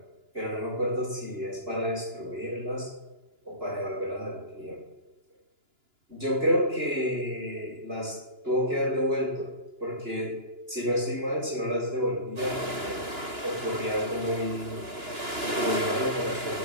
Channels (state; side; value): late; left; 2.9 ms